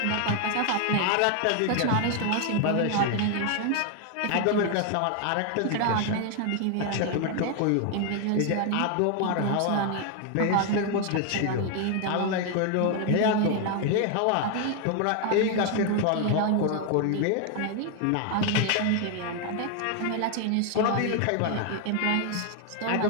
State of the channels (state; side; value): different; both; correlation 0.00